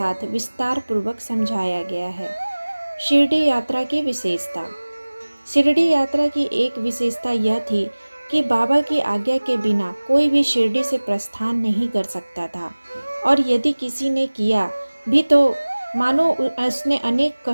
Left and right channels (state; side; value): inverted; both; correlation -1.00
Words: विस्तार पूर्वक समझाया गया है। शिरडी यात्रा की विशेषता। शिरडी यात्रा की एक विशेषता यह थी कि बाबा की आज्ञा के बिना कोई भी शिरडी से प्रस्थान नहीं कर सकता था, और यदि किसी ने किया भी तो मानो उसने अनेक